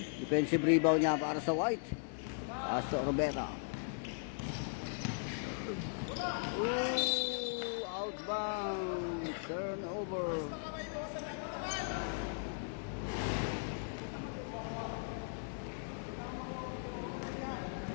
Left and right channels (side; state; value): right; silent; digital silence